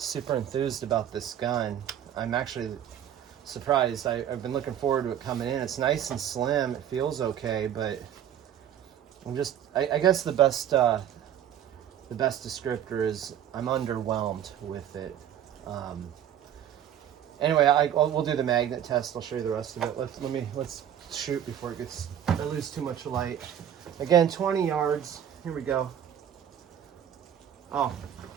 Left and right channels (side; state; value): left; quieter; 10.0 dB